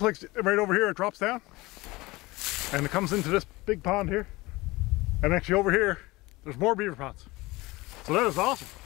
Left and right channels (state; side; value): quieter; right; 21.3 dB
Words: like right over here it drops down and it comes into this big pond here. And actually over here there's more beaver ponds. So that is awesome.